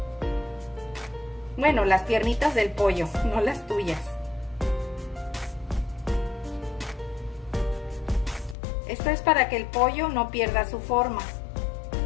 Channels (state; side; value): drops out; right; at 8.6 s